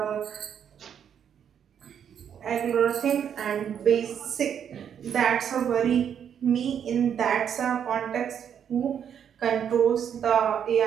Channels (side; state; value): left; quieter; 8.5 dB